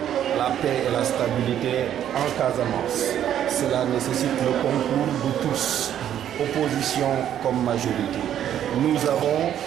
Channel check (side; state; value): left; quieter; 10.4 dB